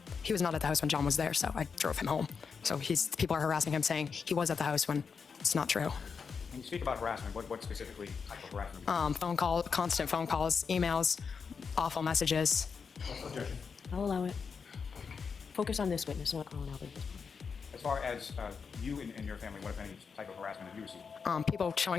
He was not at the house when John was there, so I drove him home. So people are harassing him, saying he was at the house when it's not true. When you speak about harassment, what specifically type of harassment? Phone call, constant phone calls, emails, awful messages. Objection. I'll allow it. Focus on this witness, not Colin Albert. As far as you and your family, what, if any, type of harassment have you received? People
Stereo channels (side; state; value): right; quieter; 5.8 dB